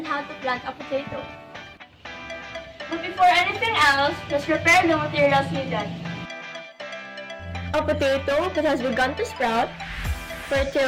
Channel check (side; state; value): both; identical; correlation 1.00